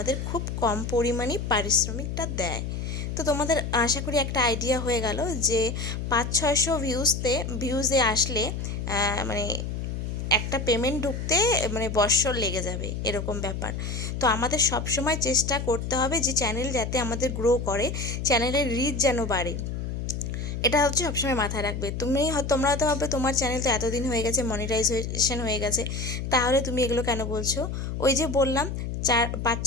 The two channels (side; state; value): left; noise; hum, 4 dB below the sound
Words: খুব কম পরিমাণেই পারিশ্রমিকটা দেয়। তো তোমাদের আশা করি একটা আইডিয়া হয়ে গেল যে 500-600 ভিউজে আসলে মানে একটা পেমেন্ট ঢুকতে মানে বৎসর লেগে যাবে, এরকম ব্যাপার। তো আমাদের সব সময় চেষ্টা করতে হবে যে চ্যানেল যাতে আমাদের গ্রো করে, চ্যানেলের রিচ যেন বাড়ে, এটা হচ্ছে সবসময় মাথায় রাখবে। তোমরা হয়তো ভাববে তোমার চ্যানেল তো এতদিন হয়ে গেছে, মনিটাইজেশন হয়ে গেছে, তাহলে তুমি এগুলো কেন বলছো? ওই যে বললাম,